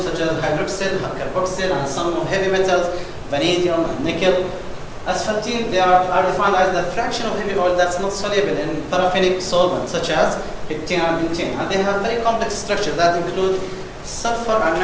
such as hydroxyl, carboxyl, and some heavy metals, vanadium, and nickel. Asphaltene, they are defined as the fraction of heavy oil that's not soluble in paraffinic solvents such as heptane and butane. And they have very complex structures that include sulfur and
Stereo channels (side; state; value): both; identical; correlation 1.00